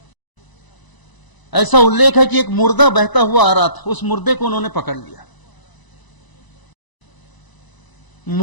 ऐसा उल्लेख है कि एक मुर्दा बहता हुआ आ रहा था, उस मुर्दे को उन्होंने पकड़ लिया।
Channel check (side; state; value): right; late; 1.0 ms